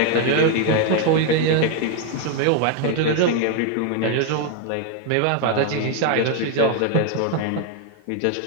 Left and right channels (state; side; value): different; both; correlation 0.01